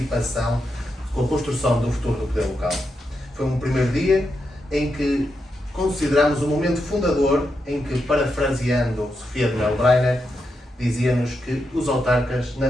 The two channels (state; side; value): normal; both; correlation 0.85